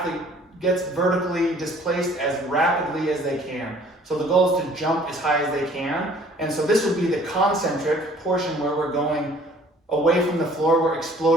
gets vertically displaced as rapidly as they can. So the goal is to jump as high as they can. And so this would be the concentric portion where we're going away from the floor, we're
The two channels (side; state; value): both; normal; correlation 0.55